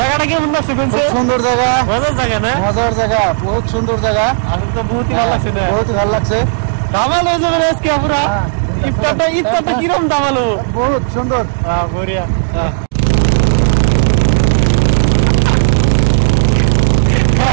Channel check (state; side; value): silent; left; digital silence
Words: কেমন লাগছে? সুন্দর জায়গা, মজার জায়গা না? মজার জায়গা, বহুত সুন্দর জায়গা। আসলে তো বহুত ভালো লাগছে না? বহুত ভালো লাগছে। দামাল হয়ে যাবে আজকে পুরা ইফতারটা কিরকম দামাল? বহুত সুন্দর, বঢ়িয়া।